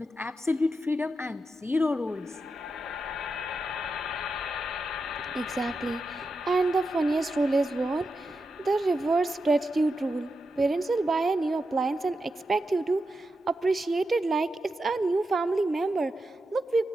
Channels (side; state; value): both; normal; correlation 0.88